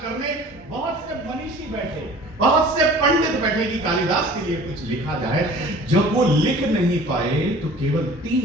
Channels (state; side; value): normal; both; correlation 0.46